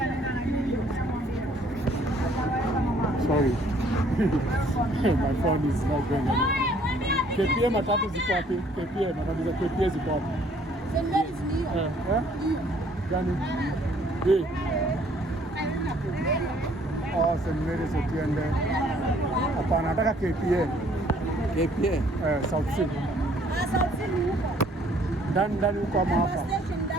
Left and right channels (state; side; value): normal; both; correlation 0.61